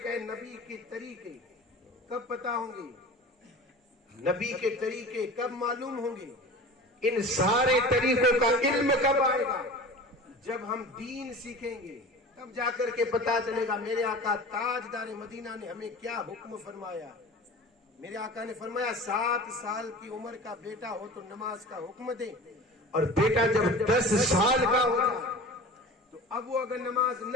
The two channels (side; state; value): both; normal; correlation 0.37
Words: ہے، نبی کے طریقے کب پتا ہوں گے؟ نبی کے طریقے کب معلوم ہوں گے؟ ان سارے طریقوں کا علم کب آئے گا؟ جب ہم دین سیکھیں گے، تب جا کر کے پتا چلے گا میرے آقا تاجدار مدینہ نے ہمیں کیا حکم فرمایا۔ میرے آقا نے فرمایا 7 سال کی عمر کا بیٹا ہو تو نماز کا حکم دے، اور بیٹا جب 10 سال کا ہو جائے تو اب وہ اگر نماز